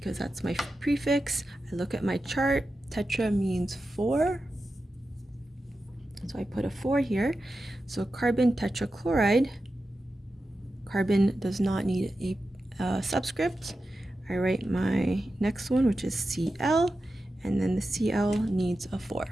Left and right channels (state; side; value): normal; both; correlation 0.91